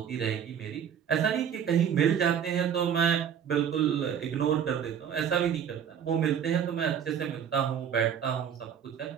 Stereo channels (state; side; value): quieter; left; 8.4 dB